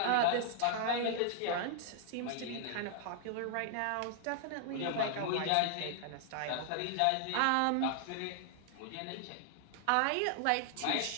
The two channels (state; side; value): different; both; correlation 0.00